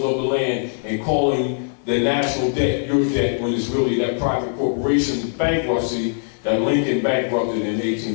of the land, and calling the national debt your debt when it's really that private corporation's bankruptcy that Lincoln bankrupted in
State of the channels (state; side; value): silent; right; digital silence